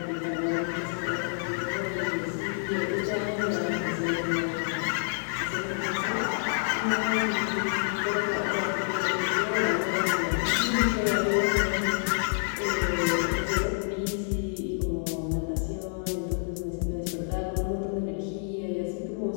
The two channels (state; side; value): silent; right; digital silence